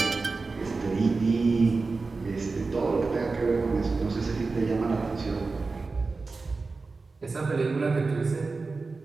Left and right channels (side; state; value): left; quieter; 4.0 dB